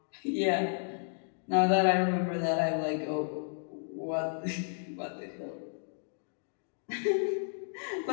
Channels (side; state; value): right; silent; digital silence